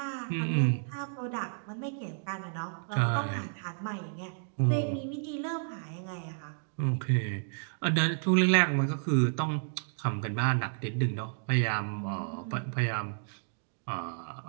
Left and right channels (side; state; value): left; silent; digital silence